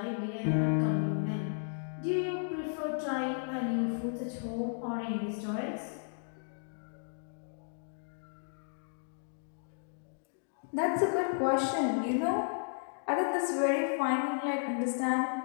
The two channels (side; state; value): right; silent; digital silence